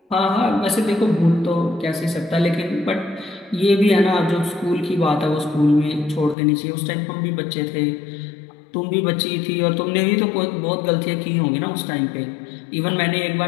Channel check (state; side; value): drops out; right; at 6.4 s